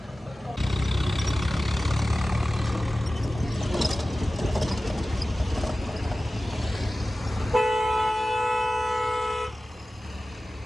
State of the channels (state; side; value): normal; both; correlation 0.96